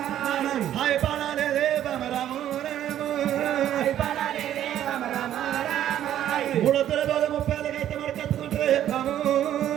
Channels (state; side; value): quieter; left; 11.4 dB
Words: హాయ్ పడాలే బామ రాము రాము మూడొత్తుల రోజు 30 అయితే మరి కత్తుకుంటే బాము